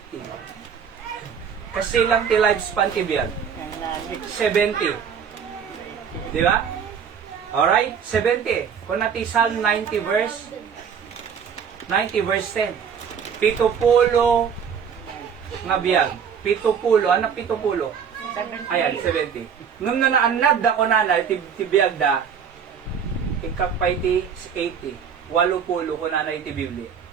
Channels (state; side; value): quieter; left; 7.2 dB